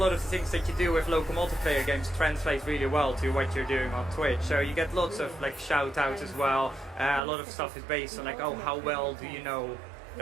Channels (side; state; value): left; drops out; at 7.2 s